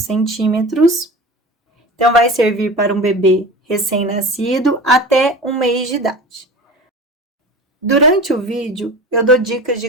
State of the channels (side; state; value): both; normal; correlation 0.34